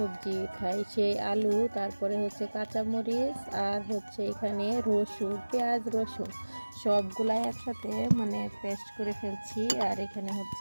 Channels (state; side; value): inverted; both; correlation -1.00